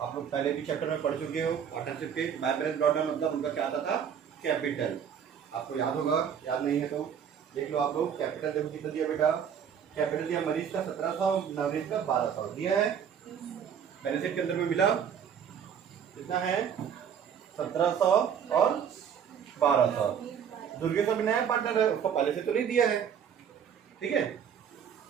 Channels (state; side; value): quieter; left; 8.0 dB